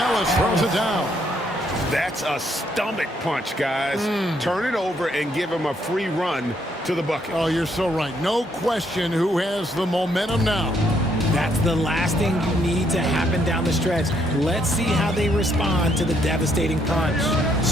throws it down. That's a stomach punch, guys. Turn it over and give him a free run to the bucket. Oh, you're so right. No question who has the momentum now. That's the last thing you need to happen down the stretch. Let's see how they respond to the devastating punch.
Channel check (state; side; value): normal; both; correlation 0.71